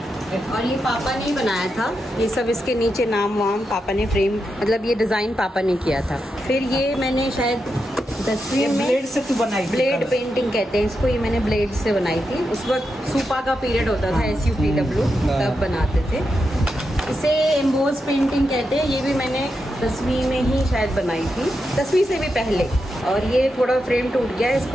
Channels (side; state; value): both; normal; correlation 0.86